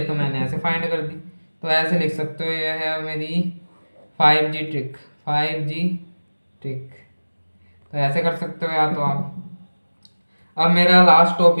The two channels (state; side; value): inverted; both; correlation -1.00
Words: मैंने ऐसे फाइंड कर दी। तो ऐसे लिख सकते हो, यह है मेरी 5G ट्रिक, 5G ट्रिक। तो ऐसे कर सकते हो या तो आप। अब मेरा लास्ट